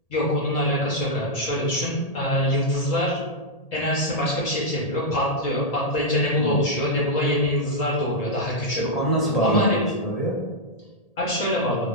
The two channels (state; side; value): late; right; 1.8 ms